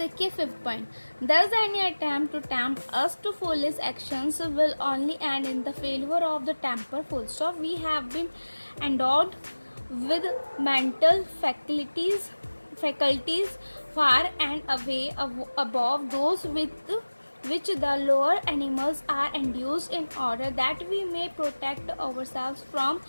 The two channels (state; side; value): inverted; both; correlation -1.00